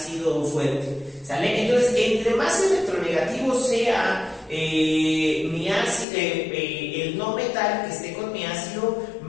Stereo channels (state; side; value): drops out; right; at 6.1 s